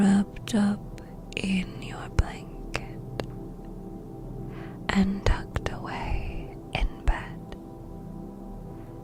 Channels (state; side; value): identical; both; correlation 1.00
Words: up in your blanket and tucked away in bed.